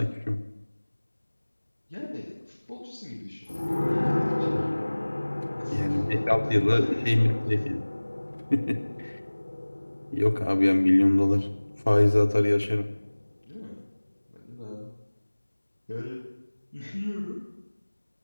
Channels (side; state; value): both; inverted; correlation -1.00